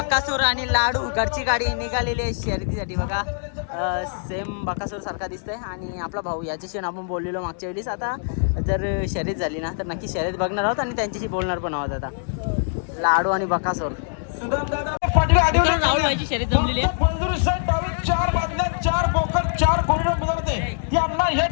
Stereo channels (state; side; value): silent; right; digital silence